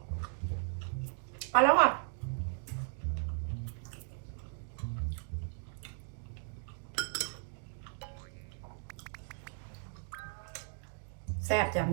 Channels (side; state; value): left; silent; 53 dB below the other